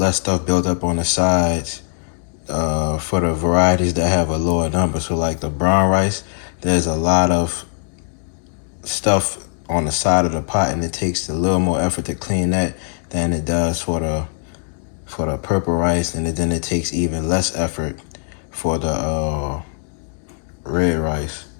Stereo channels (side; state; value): right; silent; digital silence